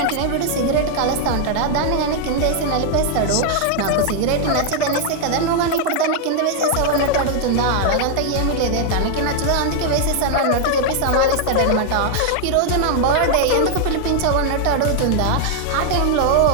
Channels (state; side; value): different; both; correlation 0.00